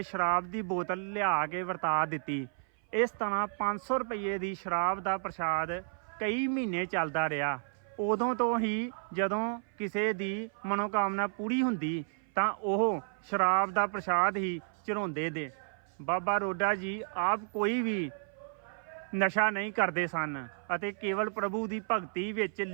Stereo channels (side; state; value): left; silent; 56 dB below the other